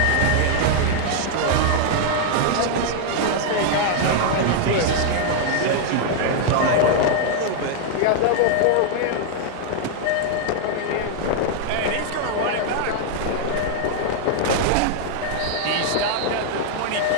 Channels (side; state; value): both; different; correlation 0.00